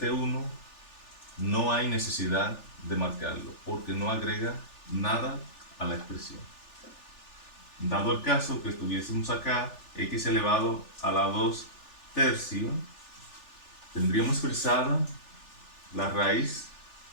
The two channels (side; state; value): right; late; 3.4 ms